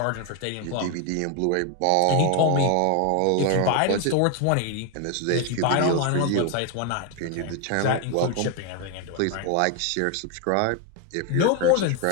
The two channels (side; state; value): both; different; correlation 0.01